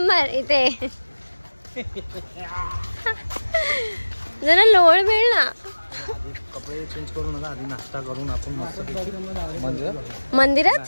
इथे. जरा लोळ मिळ ना. कपडे चेंज करू नका, आधी नाश्ता करून आपण मस्त मंदिरात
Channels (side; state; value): both; inverted; correlation -1.00